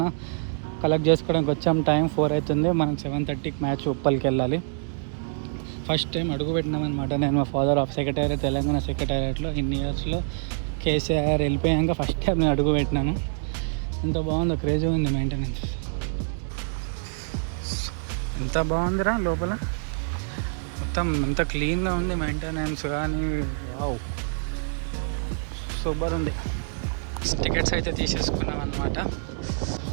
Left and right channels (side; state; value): left; silent; digital silence